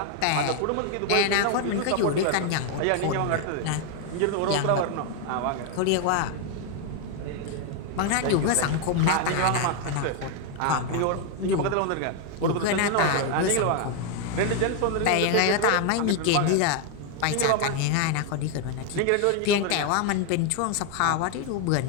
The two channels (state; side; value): different; both; correlation 0.00